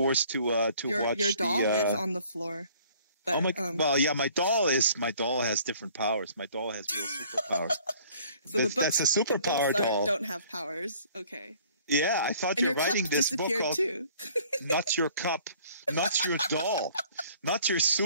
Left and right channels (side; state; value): both; inverted; correlation -0.55